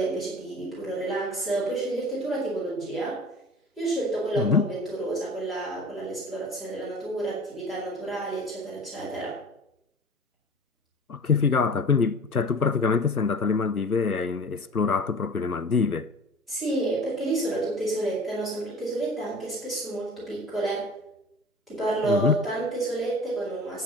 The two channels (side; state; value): both; normal; correlation 0.41